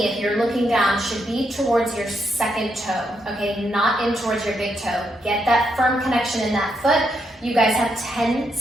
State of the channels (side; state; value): both; normal; correlation 0.79